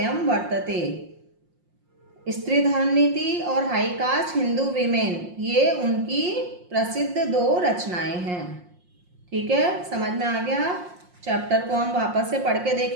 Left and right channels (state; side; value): late; left; 5.6 ms